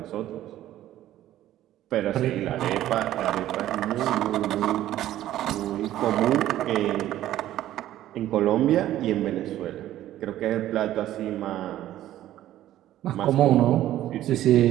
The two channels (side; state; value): left; quieter; 13.3 dB